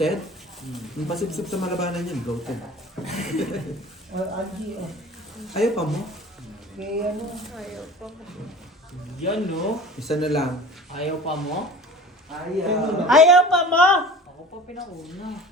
Yung pasipsip sa malabanan yan, bloated. Angie, oh. Ayaw pa mo? Kay ano? Ayaw pa. Yan no. Isa na lang. Ayaw pa mo? Ayaw pa mo! Ako pa pinauna.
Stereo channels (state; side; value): normal; both; correlation 0.40